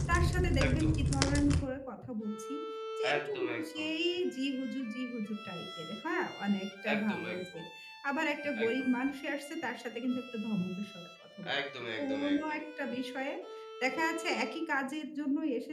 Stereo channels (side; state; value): both; identical; correlation 1.00